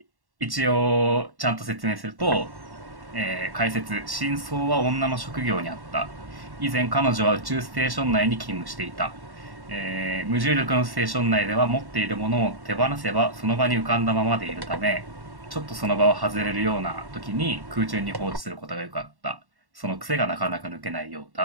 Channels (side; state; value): left; late; 1.1 ms